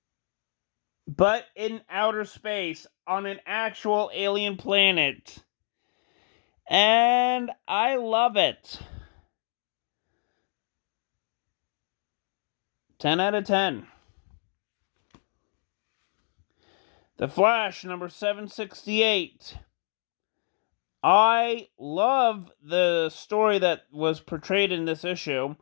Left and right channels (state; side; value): silent; right; 59 dB below the other